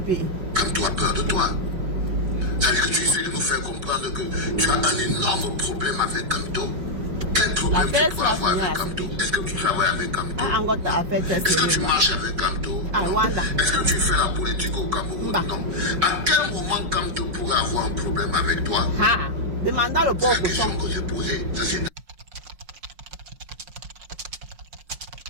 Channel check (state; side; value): late; left; 5.3 ms